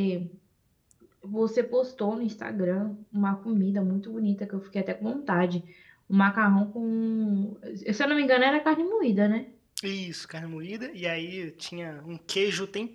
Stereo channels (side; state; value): both; identical; correlation 1.00